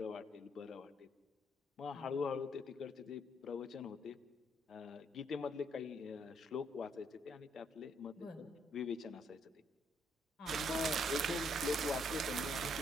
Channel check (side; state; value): both; normal; correlation 0.71